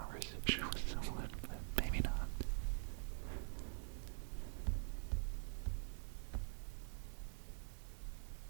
with someone, but maybe not.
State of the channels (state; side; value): silent; left; digital silence